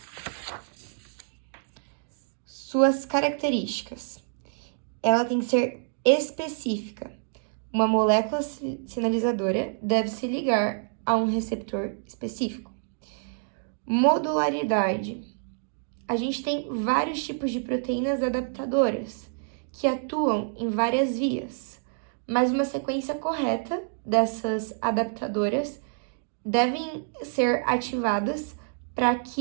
Suas características. Ela tem que ser específica. Uma molécula sinalizadora deve se ligar a um receptor específico. Modularidade. A gente tem vários tipos de proteínas adaptadoras que atuam em várias vias, mas uma sequência correta dessas adaptadoras devem ser ativadas para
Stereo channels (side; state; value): left; silent; digital silence